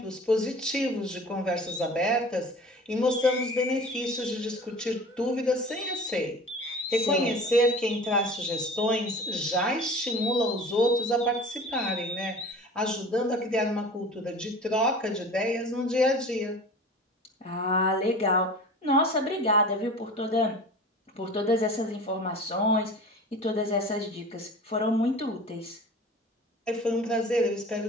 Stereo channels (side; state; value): both; normal; correlation 0.40